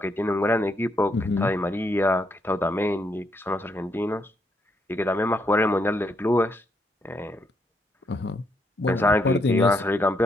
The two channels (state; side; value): normal; both; correlation 0.76